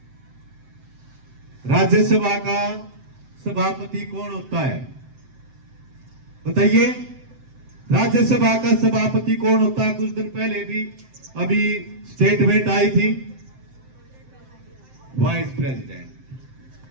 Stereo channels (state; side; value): late; left; 7.7 ms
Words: राज्यसभा का सभापति कौन होता है बताइए? राज्यसभा का सभापति कौन होता है? कुछ दिन पहले भी अभी स्टेटमेंट आई थी, वाइस प्रेसिडेंट।